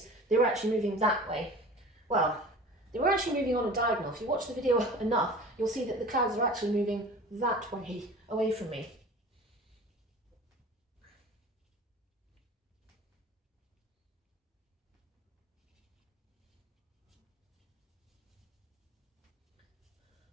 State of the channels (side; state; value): both; normal; correlation 0.40